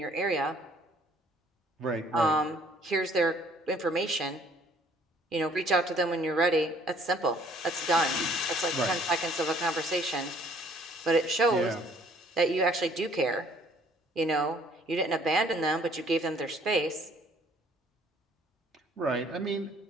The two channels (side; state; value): both; normal; correlation 0.59